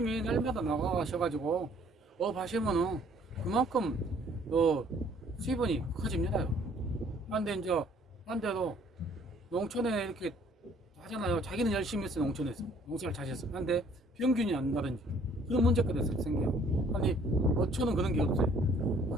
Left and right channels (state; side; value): normal; both; correlation 0.59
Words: 날마다 나가셔가지고 업 하시면은 그만큼 수입원이 커집니다. 근데 이제 반대로 농촌에 이렇게 하잖아요. 자기는 열심히 했어. 농촌에서 농사를 잘 했어. 근데 평균이 안 나든지 그런 문제가 생겨요. 아니 어촌은 그런 게 없어요.